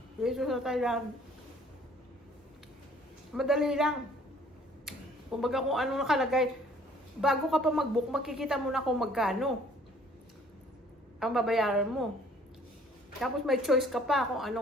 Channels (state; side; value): normal; both; correlation 0.57